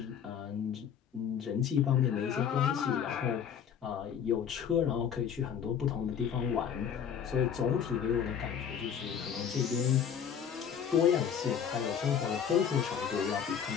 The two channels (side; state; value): right; quieter; 8.0 dB